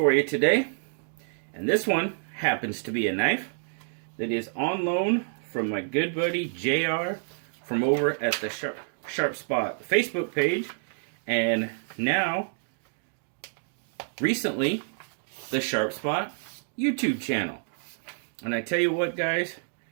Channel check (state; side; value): silent; left; digital silence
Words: you today, and this one happens to be a knife that is on loan from my good buddy JR from over at the Sharp Spot Facebook page, and now recently the Sharp Spot YouTube channel. And I tell you what, guys,